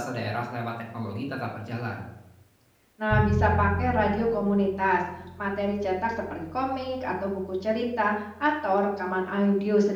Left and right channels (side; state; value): both; identical; correlation 1.00